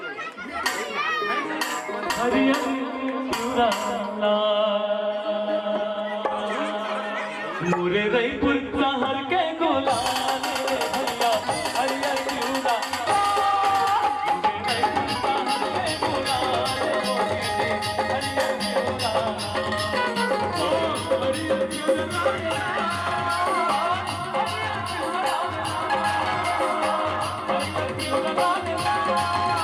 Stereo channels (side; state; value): both; identical; correlation 1.00